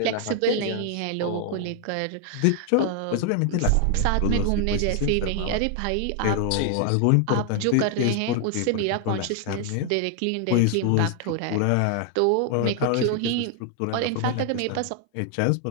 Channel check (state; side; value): different; both; correlation 0.00